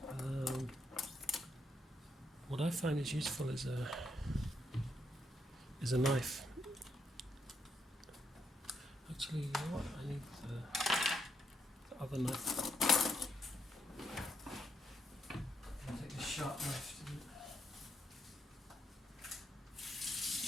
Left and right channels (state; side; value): normal; both; correlation 0.78